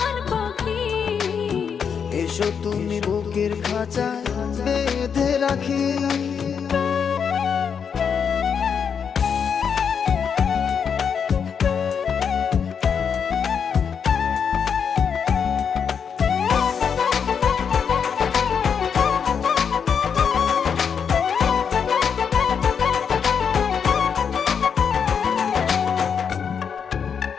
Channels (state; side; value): quieter; right; 6.9 dB